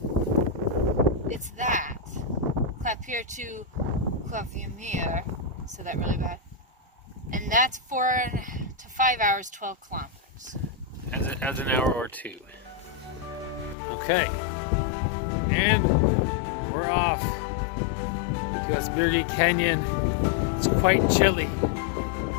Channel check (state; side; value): drops out; right; at 13.8 s